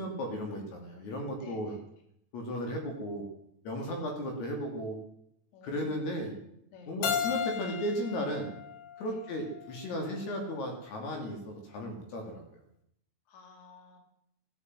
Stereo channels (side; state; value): right; late; 9.2 ms